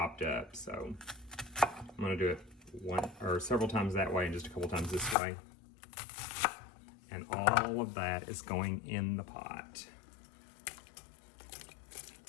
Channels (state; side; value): drops out; right; at 5.2 s